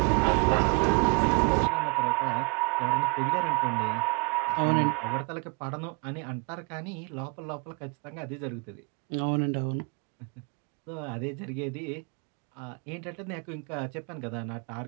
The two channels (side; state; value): left; quieter; 31.7 dB